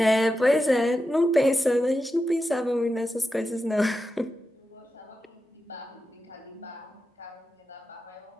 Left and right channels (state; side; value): normal; both; correlation 0.90